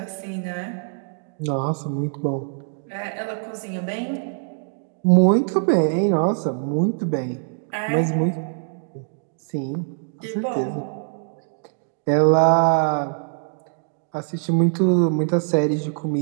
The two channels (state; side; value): silent; left; digital silence